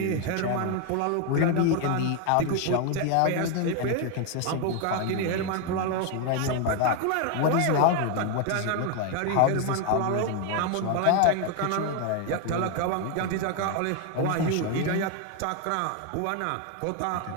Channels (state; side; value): different; both; correlation 0.01